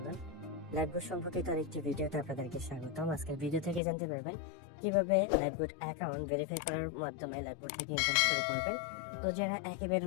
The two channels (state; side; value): drops out; right; at 3.8 s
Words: লাইফবোট সম্পর্কিত আরেকটি ভিডিওতে আপনাদেরকে স্বাগতম। আজকের ভিডিও থেকে জানতে পারবেন কিভাবে লাইফবোট অ্যাকাউন্ট ভেরিফাই করার মাধ্যমে লাইফবোট থেকে ইনকাম শুরু করবেন। তো যারা একেবারে